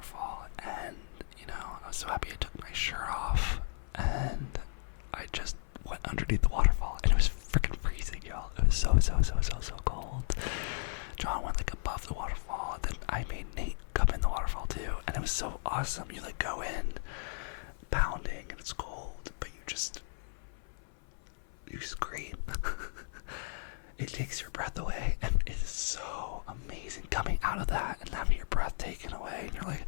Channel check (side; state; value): right; silent; 55 dB below the other